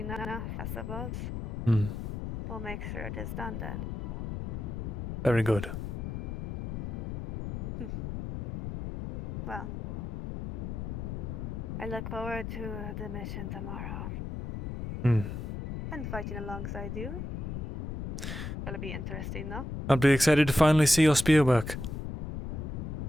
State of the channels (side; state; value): left; noise; rumble, 5 dB below the sound